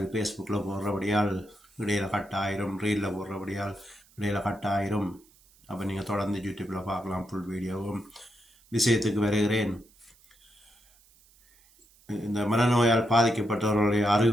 ஃபேஸ்புக்கில் போடுறபடியால் இடையில் கட் ஆயிரும், ரீலில் போடுறபடியால் இடையில் கட் ஆயிரும். அப்போ நீங்கள் தொடர்ந்து யூடியூப்பில் பார்க்கலாம் ஃபுல் வீடியோவும். விஷயத்துக்கு வருகிறேன். இந்த மனநோயால் பாதிக்கப்பட்டவர்களுடைய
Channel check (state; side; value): noise; right; hiss, 30 dB below the sound